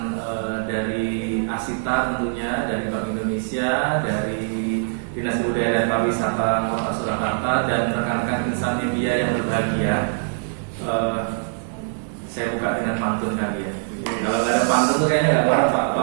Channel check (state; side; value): silent; left; 56 dB below the other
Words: dari Asita tentunya, dari Bank Indonesia, dari Dinas Budaya dan Pariwisata Kota Surakarta, dan rekan-rekan insan media yang berbahagia. Saya buka dengan pantun kali ya. Kalau nggak ada pantun tuh kayaknya nggak parah Pak.